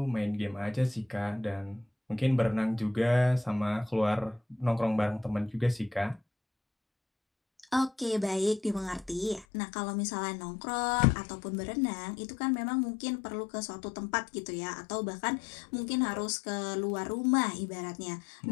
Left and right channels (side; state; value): right; drops out; at 9.5 s